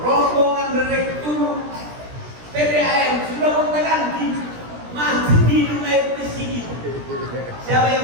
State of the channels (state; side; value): late; left; 17 ms